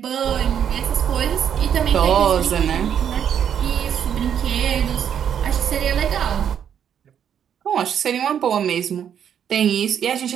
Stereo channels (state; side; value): quieter; left; 8.8 dB